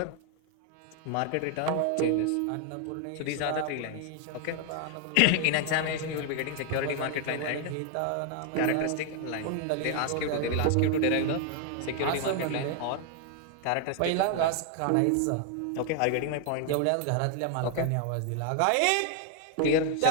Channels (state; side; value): different; both; correlation 0.00